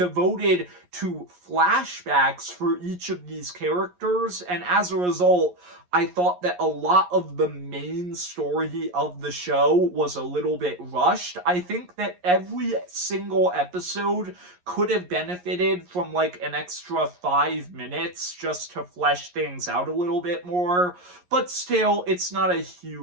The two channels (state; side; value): late; left; 11 ms